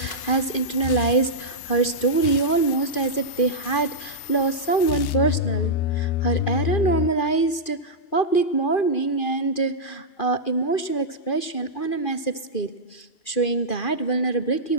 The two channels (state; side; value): late; right; 2.4 ms